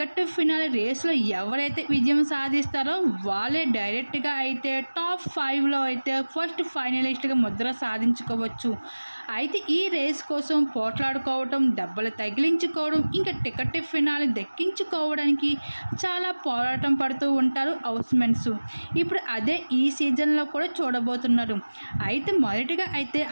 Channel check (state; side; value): inverted; both; correlation -1.00